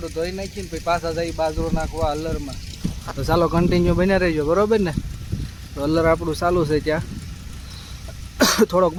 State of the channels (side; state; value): both; identical; correlation 1.00